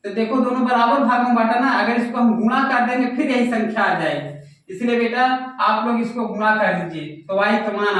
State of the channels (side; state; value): both; identical; correlation 1.00